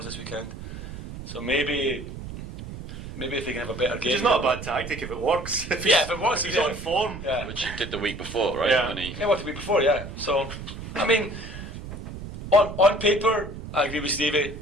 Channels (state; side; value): noise; right; rumble, 10 dB below the sound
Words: this weekend. So maybe if they can have a better game. Which is not a bad tactic if it works. If it works, he's on form. Yeah. Which he did the week before, right? Yeah. What the week before, yeah. So, I mean, on paper, I agree with Stevie.